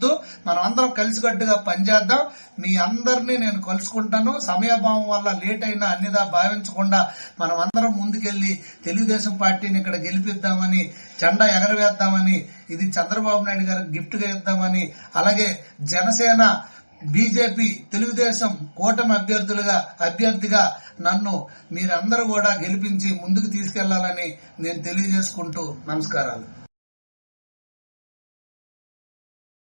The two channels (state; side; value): inverted; both; correlation -1.00